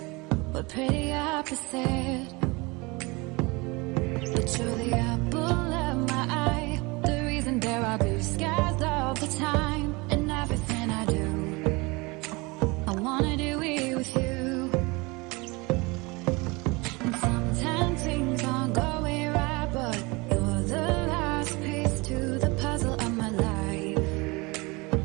we're pretty opposite. But you're the apple of my eye, the reason there are blue skies all the time. And everything I do, I wanna do it with you. And sometimes things aren't going right, but you're the last piece to the puzzle of my life.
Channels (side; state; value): left; quieter; 25.6 dB